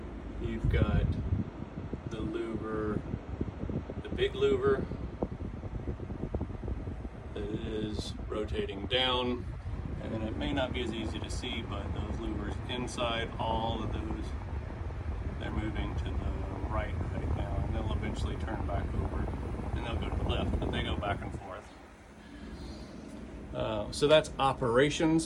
you've got the louver, the big louver that is rotating down, and then it may not be as easy to see, but those louvers inside, all of those, they're moving to the right now, and they'll eventually turn back over, and they'll go to the left, but they go back and forth. So that's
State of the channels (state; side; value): identical; both; correlation 1.00